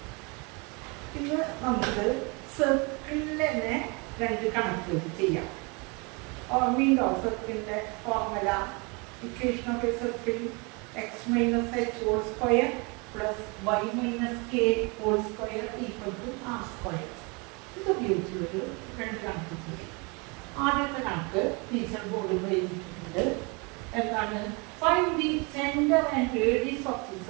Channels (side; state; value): left; quieter; 30.2 dB